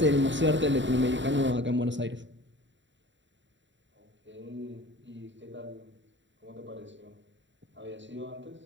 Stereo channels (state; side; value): late; left; 0.54 ms